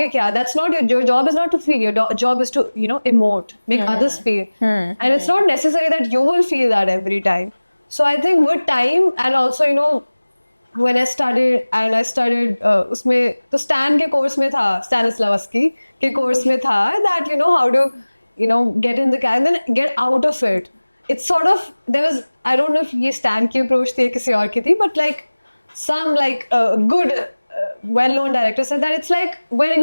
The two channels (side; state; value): both; inverted; correlation -1.00